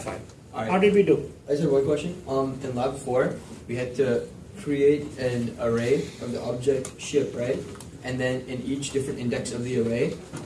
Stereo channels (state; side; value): identical; both; correlation 1.00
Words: Alright. How did we do? I just have one question. In lab 4, we had to create an array of the object ship, right? And then in each different index of the array,